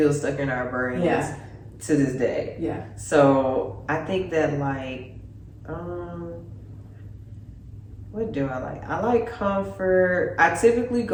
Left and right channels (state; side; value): identical; both; correlation 1.00